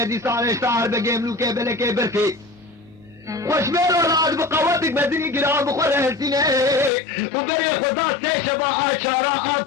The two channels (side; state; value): right; drops out; at 6.9 s